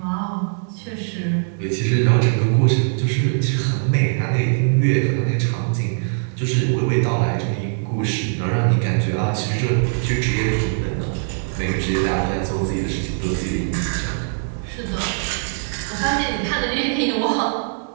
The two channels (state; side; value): silent; left; digital silence